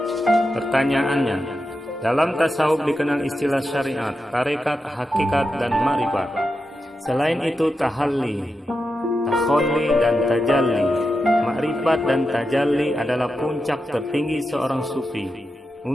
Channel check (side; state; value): both; normal; correlation 0.89